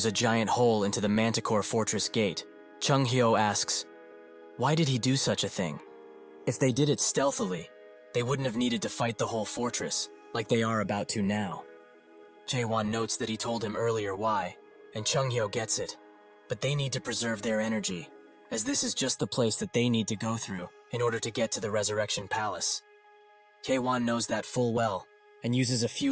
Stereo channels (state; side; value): identical; both; correlation 1.00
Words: a giant hole into the Manticore Fortress gate, Chung-hyo asks, why did he do such a thing? If they did it stealthily, they wouldn't have needed to fight the whole fortress, like they are about to now. Jaewon notes that he told him earlier why, and Chung-hyo gets it, but they need to preserve their energy, as this is just the place that they need to go through in order to get to the Resurrection Palace. Jaewon knows that full well, and uses a